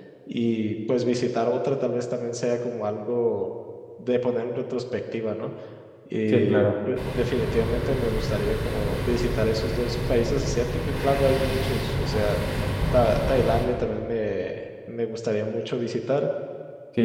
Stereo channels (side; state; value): both; identical; correlation 1.00